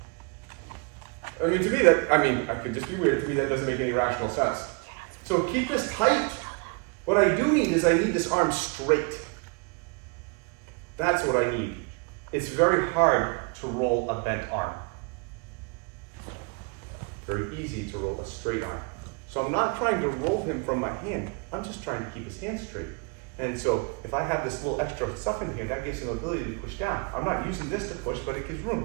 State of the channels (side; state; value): left; quieter; 32.1 dB